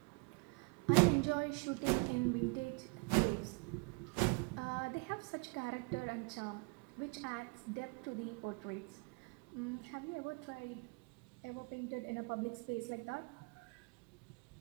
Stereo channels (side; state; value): left; quieter; 32.1 dB